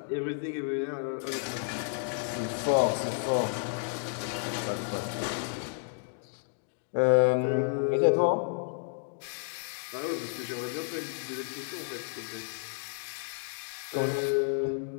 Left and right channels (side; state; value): right; silent; digital silence